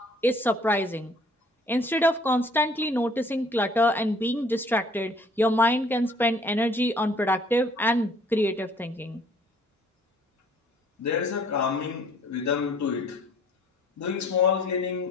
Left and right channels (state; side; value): normal; both; correlation 0.58